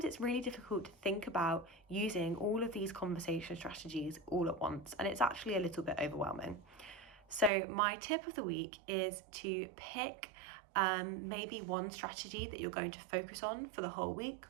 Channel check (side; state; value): left; drops out; at 7.5 s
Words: it's really difficult to think about using all of these conversation strategies all at once, and it's actually a little bit overwhelming. So my tip of the week is to pick maybe one strategy that you're going to focus on for the whole week,